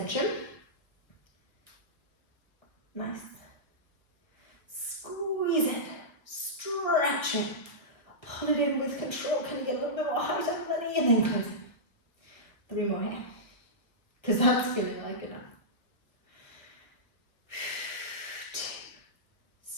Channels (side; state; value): right; late; 1.0 ms